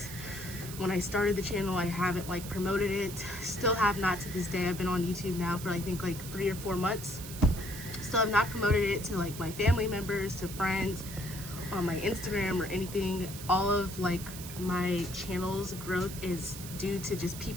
when I started the channel, I haven't like promoted it. Still have not to this day. I've been on YouTube now for I think like 3 or 4 months. Still have not promoted it to like my family members, to friends, on my Instagram or anything. All of like my channel's growth is due to just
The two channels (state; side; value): noise; right; hiss, 11 dB below the sound